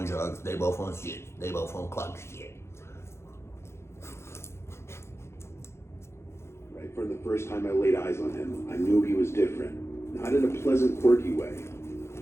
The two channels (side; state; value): right; late; 0.13 ms